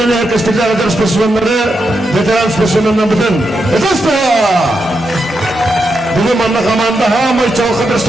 herkeslikler eder spesimenleri veteran spesimenlerden bütün. Etasta! Bugün bana kamanda hamay çalkadır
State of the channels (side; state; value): both; normal; correlation 0.85